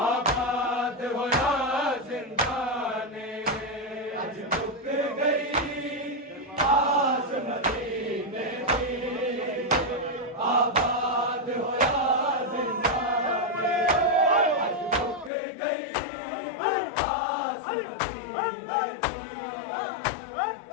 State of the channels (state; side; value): drops out; right; at 15.3 s